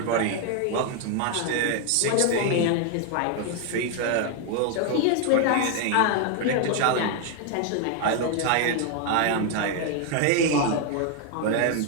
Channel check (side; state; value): both; different; correlation 0.00